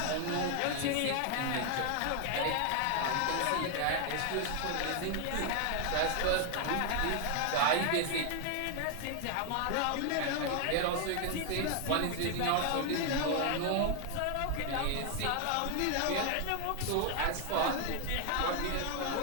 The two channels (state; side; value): different; both; correlation 0.00